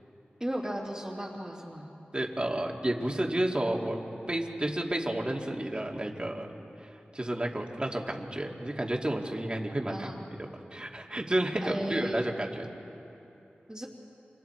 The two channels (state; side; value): normal; both; correlation 0.96